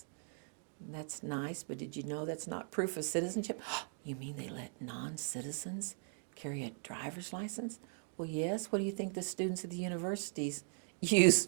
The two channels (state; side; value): silent; left; 52 dB below the other